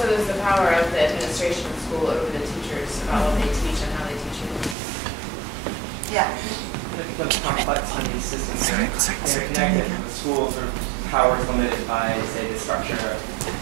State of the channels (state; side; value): drops out; left; at 4.8 s